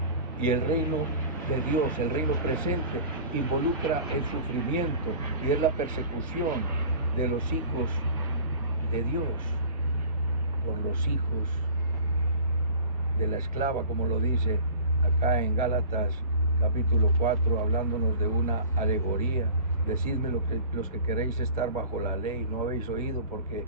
Y el reino de Dios, el reino presente, involucra el sufrimiento y es la persecución de los hijos de Dios por los hijos de la esclava, como lo dice acá en Gálatas capítulo 4, hablándonos de una alegoría. Decidme los que queréis estar bajo la ley, ¿no habéis oído? Porque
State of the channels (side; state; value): both; inverted; correlation -0.42